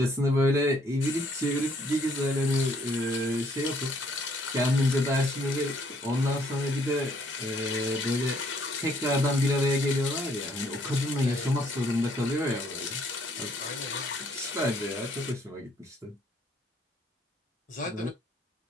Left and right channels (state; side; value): normal; both; correlation 0.66